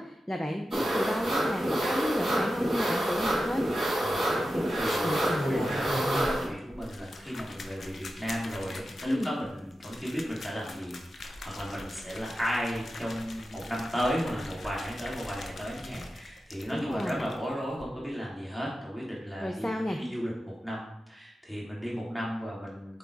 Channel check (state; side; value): normal; both; correlation 0.92